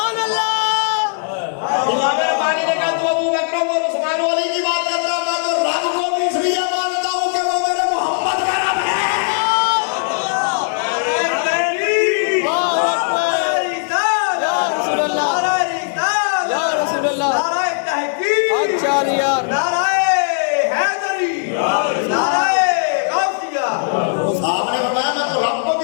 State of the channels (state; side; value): silent; right; digital silence